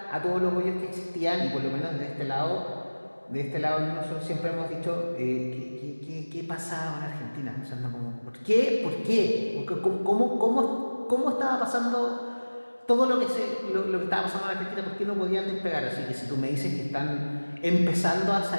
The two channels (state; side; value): inverted; both; correlation -1.00